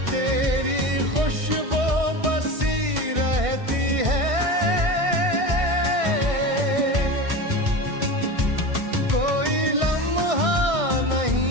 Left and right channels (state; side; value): late; left; 1.6 ms